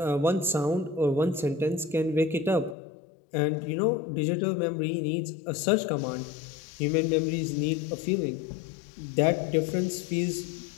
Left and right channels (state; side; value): drops out; right; at 2.8 s